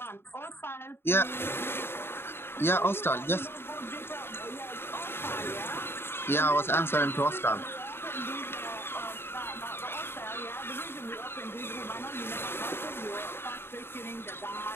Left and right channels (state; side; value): late; right; 0.11 ms